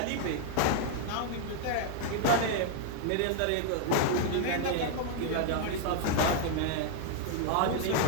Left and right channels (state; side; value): different; both; correlation 0.00